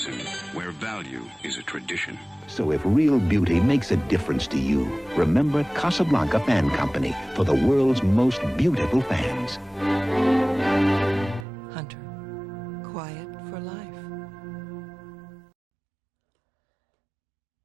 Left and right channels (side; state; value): left; drops out; at 11.5 s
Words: where value is a tradition. So if real beauty makes a difference to you, remember Casablanca Fan Company for the world's most beautiful fans. Hunter, quiet for life.